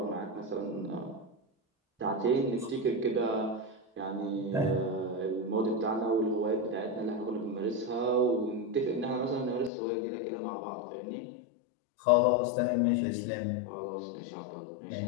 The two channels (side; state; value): right; drops out; at 9.7 s